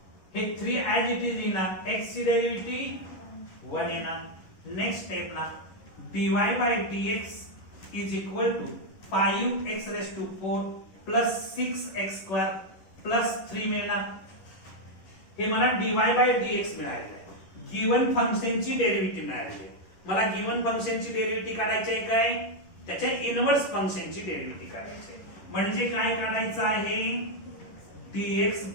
हे 3 ऍज इट इज येणार. x ची derivative 1 येणार. नेक्स्ट स्टेपला dy by dx is equal to 5x raised to 4 plus 6x square plus 3 मिळणार. हे मला dy बाय dx मिळालेलं आहे. गिवन फंक्शनची डेरिव्हेटिव्ह मिळालेली आहे. मला गिवन फंक्शनची डेरिव्हेटिव्ह काढायची आहे काय, त्याच्या इनव्हर्स फंक्शनची डेरिव्हेटिव्ह काढायची आहे. म्हणजे काय काढायचं आहे, dx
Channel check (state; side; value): late; right; 11 ms